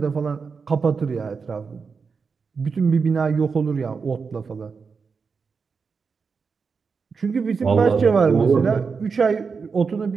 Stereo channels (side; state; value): left; quieter; 5.3 dB